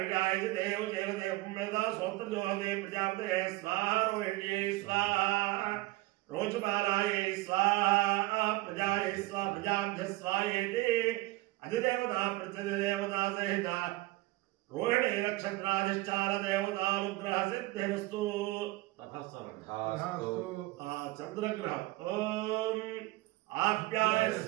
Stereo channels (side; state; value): left; quieter; 19.6 dB